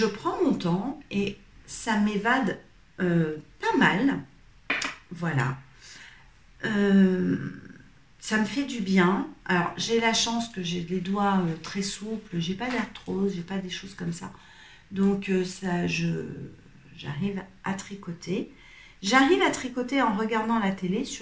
prends mon temps et ça m'évade pas mal. Voilà. Ça me fait du bien. Alors, j'ai la chance que j'ai les doigts très souples, j'ai pas d'arthrose, j'ai pas des choses comme ça. Donc, j'arrive à tricoter. J'arrive à tricoter en regardant la télé,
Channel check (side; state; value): both; identical; correlation 1.00